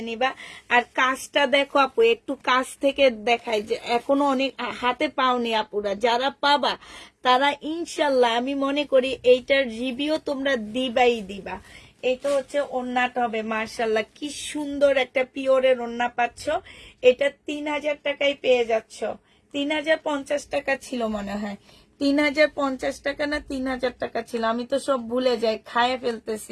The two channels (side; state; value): both; identical; correlation 1.00